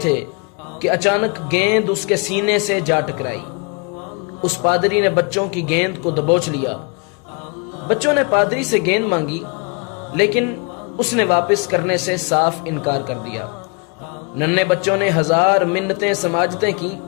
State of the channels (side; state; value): right; quieter; 33.1 dB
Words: کہ اچانک گیند اس کے سینے سے جا ٹکرائی۔ اس پادری نے بچوں کی گیند کو دبوچ لیا۔ بچوں نے پادری سے گیند مانگی، لیکن اس نے واپس کرنے سے صاف انکار کر دیا۔ ننھے بچوں نے ہزار منتیں سماجتیں کی،